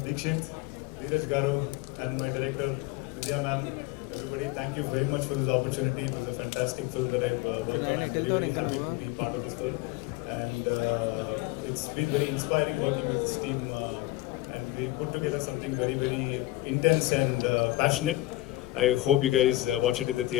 Dikshit, Dheeraj Garu, and my director Vidya ma'am. Everybody, thank you very much for this opportunity. It was a fantastic film that I've worked on. I'm very happy to be part of this film, and it's been very inspiring working with this team. And we put together something very, very intense and passionate. I hope you guys watch it in the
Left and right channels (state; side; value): quieter; right; 17.7 dB